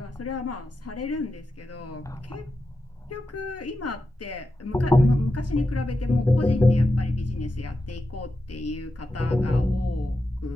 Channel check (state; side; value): normal; both; correlation 0.89